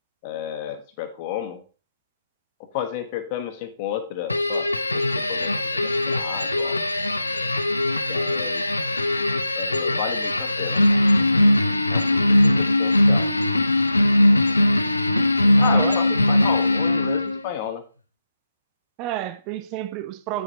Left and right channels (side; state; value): both; inverted; correlation -0.91